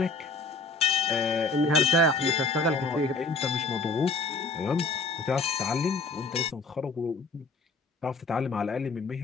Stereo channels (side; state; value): right; quieter; 3.6 dB